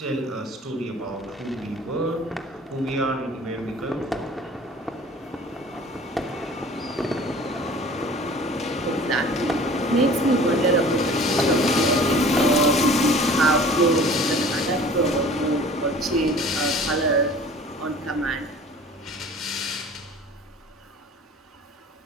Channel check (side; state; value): both; normal; correlation 0.46